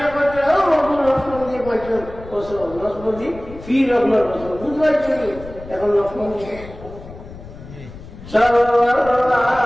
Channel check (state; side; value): noise; left; rumble, 16 dB below the sound